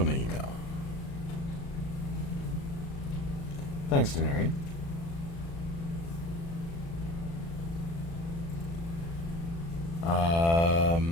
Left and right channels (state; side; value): late; right; 36 ms